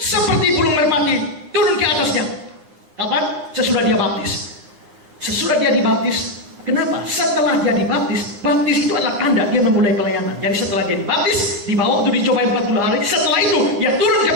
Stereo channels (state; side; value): late; left; 9.6 ms